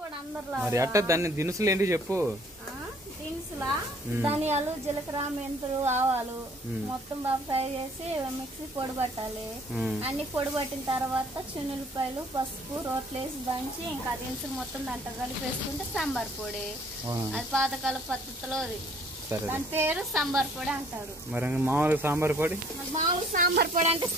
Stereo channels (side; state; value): both; normal; correlation 0.58